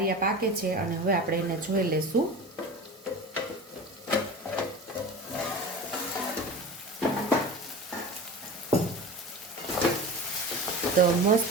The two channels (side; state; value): both; normal; correlation 0.33